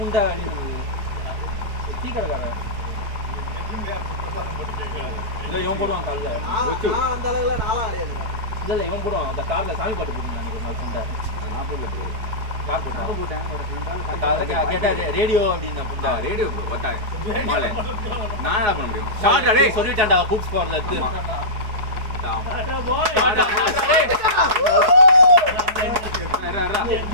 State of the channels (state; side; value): late; left; 4.8 ms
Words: அடி டீ கடைக்காரன் இல்லை இவன் போடுவான் காலில். அந்த அளவுல நாளா அடையாது. இல்லை இவன் போடுவான். அந்த காரில் சாமி பாட்டு போட்டுருந்தாங்க ஒரு நாள் புண்டை. நான் போடல ப்ரோ. யார் போட்டான்? கேட்டா ரேடியோ அப்படின்னு புண்டா. ரேடியோ ப்ரோ வட்டாய் மாலே நான் என்ன பண்ண முடியும்? ஷார்ட் அடே சொல்லிட்டான்டா கூப்ஸ் போறல இருக்கு.